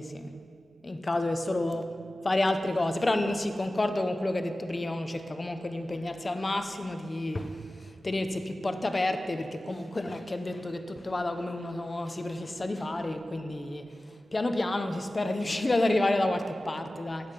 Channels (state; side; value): normal; both; correlation 0.96